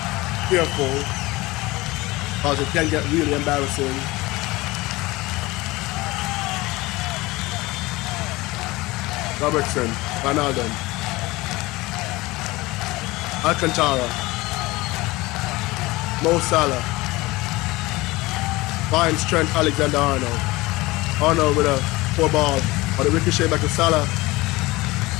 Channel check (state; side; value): quieter; right; 20.9 dB